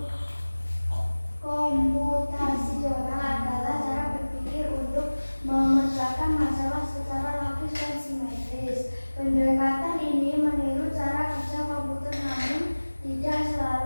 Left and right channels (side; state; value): both; inverted; correlation -1.00